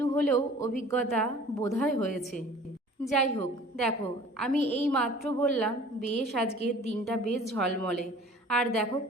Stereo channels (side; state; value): both; normal; correlation 0.47